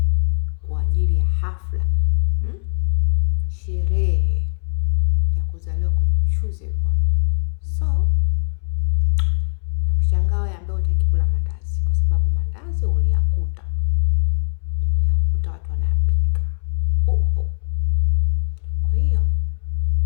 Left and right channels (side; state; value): right; silent; 65 dB below the other